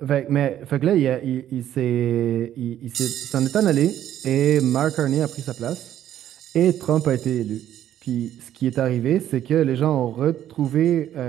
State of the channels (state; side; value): quieter; left; 11.4 dB